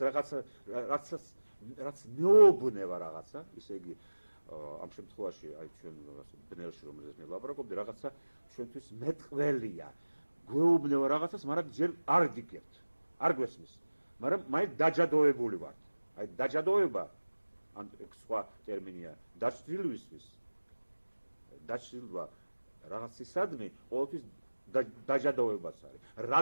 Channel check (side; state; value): both; inverted; correlation -1.00